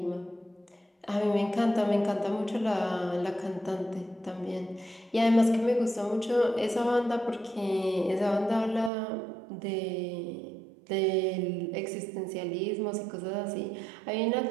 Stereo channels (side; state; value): left; drops out; at 8.9 s